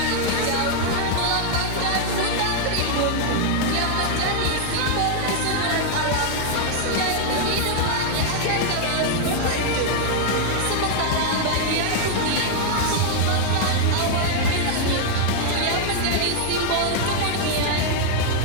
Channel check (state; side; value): different; both; correlation 0.00